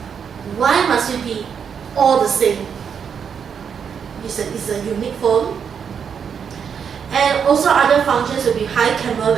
Why must you be all the same? It's a unique phone. And also other functions will be high camera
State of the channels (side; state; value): left; quieter; 7.1 dB